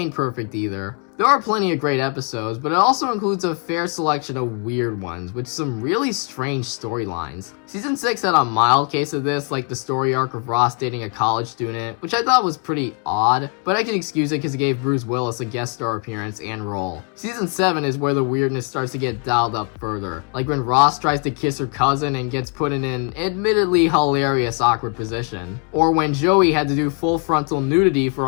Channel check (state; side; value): quieter; right; 35.4 dB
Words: perfect either. There are plenty of great episodes, but it also includes a fair selection of weird ones, with some really strange storylines. Season 6 had a mild case of this, like the story arc of Ross dating a college student, which I thought was pretty odd, but I can excuse it because it gave Bruce Willis a guest star appearance and role. Season 7 is where the weirdness starts to get dialed up further, like when Ross tries to kiss her cousin and gets put in an admittedly hilarious awkward position, or when Joey had to do full frontal nudity for